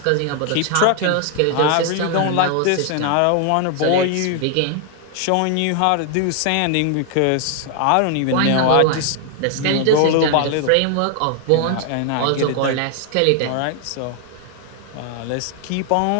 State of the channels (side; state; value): both; different; correlation 0.00